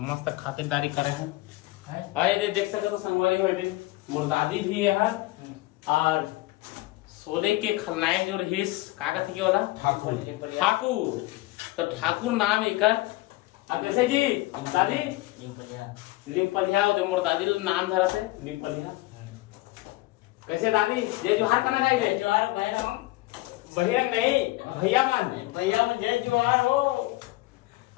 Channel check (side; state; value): right; quieter; 19.5 dB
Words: मस्त खातिरदारी करे हैं। और ये देख सकते तो संगवारी हो मोर दादी भी है और सोने के खलनायक जो रहीस का कहते के वाला ठाकुर। तो ठाकुर नाम एकर। अब कैसे जी दादी निपलिया मोर दादी नाम धरा थे निपलिया। कैसे दादी जय जोहार करना जाएंगे? जोहार भैया नहीं भैया मन जय जोहार हो।